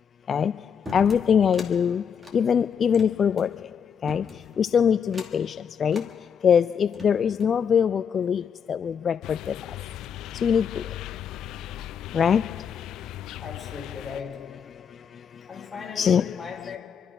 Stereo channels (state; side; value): quieter; right; 7.3 dB